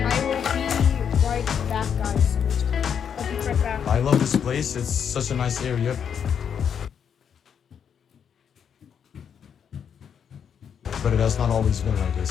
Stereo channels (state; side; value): quieter; right; 7.7 dB